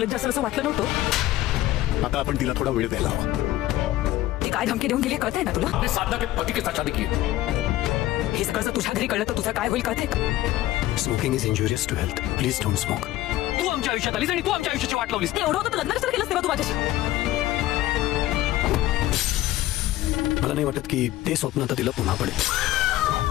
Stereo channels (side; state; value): right; quieter; 15.5 dB